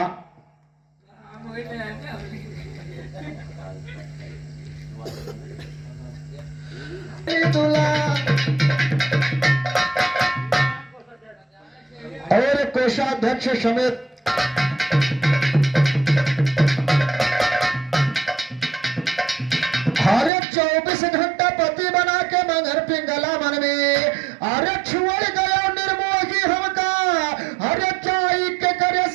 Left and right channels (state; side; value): drops out; left; at 20.3 s